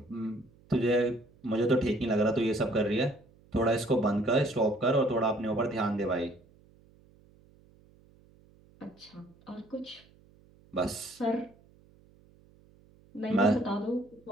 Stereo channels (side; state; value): right; noise; hum, 29 dB below the sound